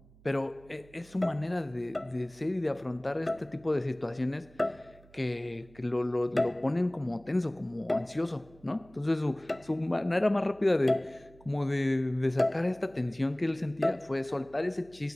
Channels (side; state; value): right; noise; hum, 25 dB below the sound